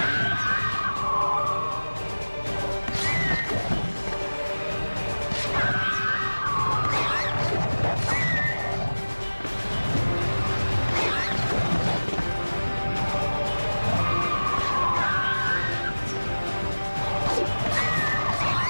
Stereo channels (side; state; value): both; inverted; correlation -1.00